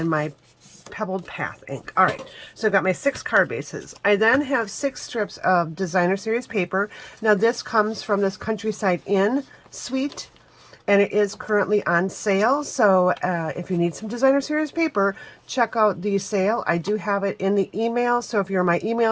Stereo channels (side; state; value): both; identical; correlation 1.00